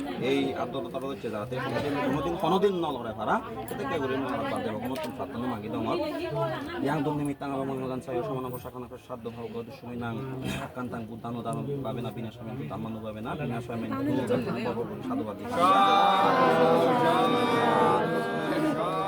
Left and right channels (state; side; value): identical; both; correlation 1.00